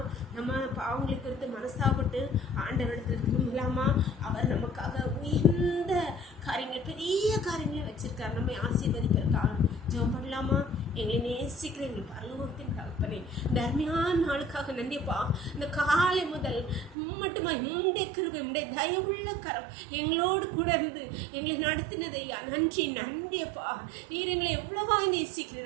நம்ம பாவங்களுக்கு குறித்து மனஸ்தாபப்பட்டு ஆண்டவரிடத்தில் திரும்பலாமா? அவர் நமக்காக உயர்ந்த காரியங்களை, பெரிய காரியங்களை வச்சிருக்கார், நம்மை ஆசீர்வதிப்பிருக்காங்க. ஜெபம் பண்ணலாமா? எங்களை நேசிக்கிற எங்கள் பரலோகத்தின் தகப்பனே, இந்த அருமையான நாளுக்காக நன்றிப்பா. இந்த காலை முதல் மட்டுமா உம்முடைய கிருபை, உம்முடைய தயவுள்ள கரம் எங்களோடு கூட இருந்து எங்களை நடத்தினதை நன்றி நன்றியப்பா. நீர் எங்களை எவ்வளவா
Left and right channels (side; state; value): left; drops out; at 16.9 s